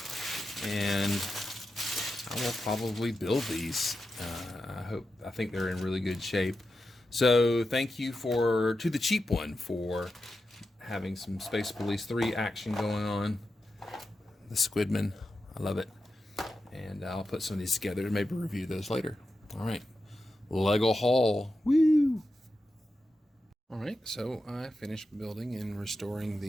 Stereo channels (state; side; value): normal; both; correlation 0.90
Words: and I will probably build these. I think they're in really good shape. So thank you to the cheap one for having some Space Police 3 action going on. The Squidman, I love it. And I'll put some of these together and maybe review those later. All right, Lego haul. Woo! All right, so I finished building and restoring